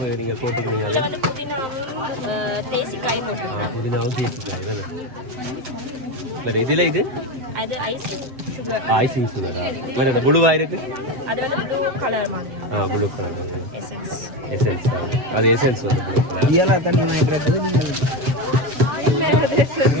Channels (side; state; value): left; late; 8.0 ms